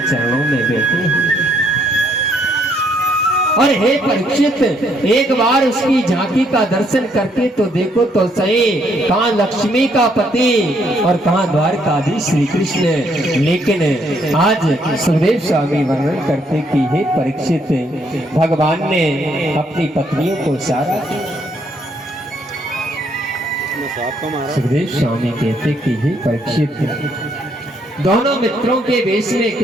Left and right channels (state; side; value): normal; both; correlation 0.70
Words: चरणों में बैठे हैं। और हे परीक्षित, एक बार उसकी झांकी का दर्शन करके तो देखो तो सही, कहाँ लक्ष्मी का पति और कहाँ द्वारकाधीश श्री कृष्ण। लेकिन आज सुखदेव स्वामी वर्णन करते कि हे परीक्षित, भगवान ने अपनी पत्नियों को इशारा किया। सुखदेव स्वामी कहते कि हे परीक्षित, दोनों मित्रों के वेश में